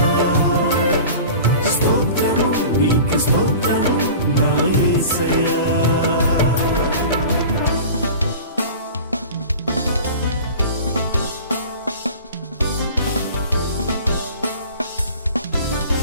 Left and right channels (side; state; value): both; inverted; correlation -0.39